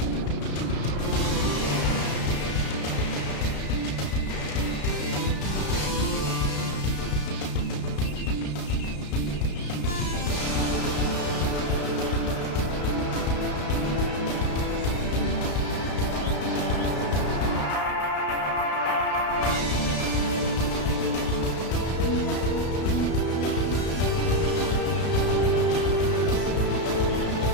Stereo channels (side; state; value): right; late; 33 ms